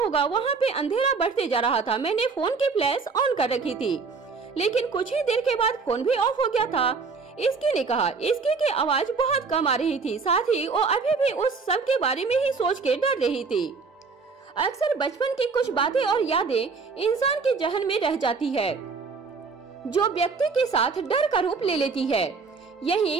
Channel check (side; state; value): left; quieter; 4.8 dB